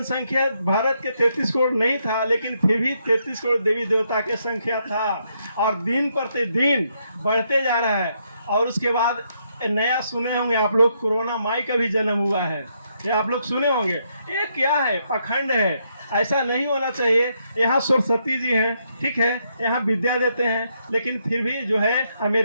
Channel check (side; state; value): both; inverted; correlation -0.77